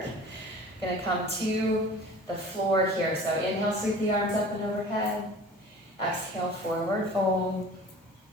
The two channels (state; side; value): normal; both; correlation 0.43